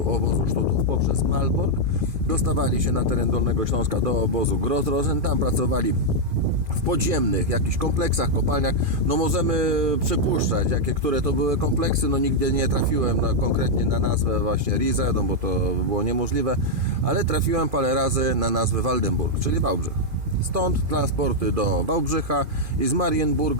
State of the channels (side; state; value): left; late; 2.5 ms